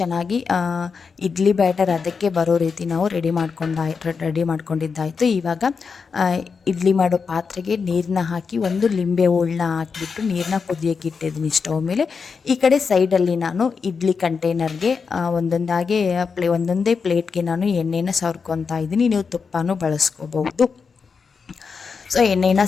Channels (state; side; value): quieter; right; 5.4 dB